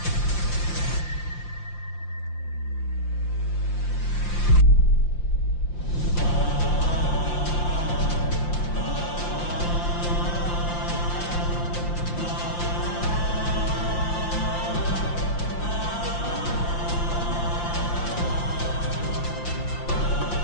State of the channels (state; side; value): late; right; 5.7 ms